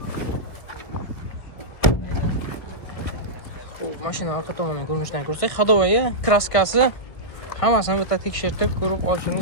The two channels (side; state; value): right; late; 1.6 ms